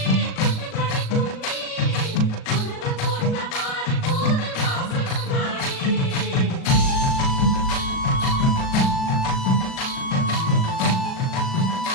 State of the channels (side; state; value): right; late; 37 ms